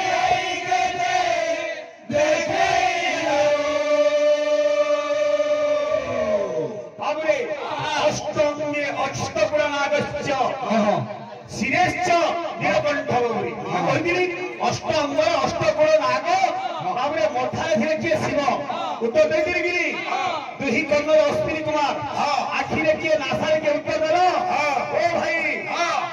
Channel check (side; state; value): both; identical; correlation 1.00